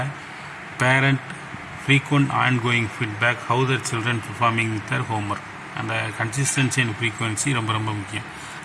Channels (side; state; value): both; identical; correlation 1.00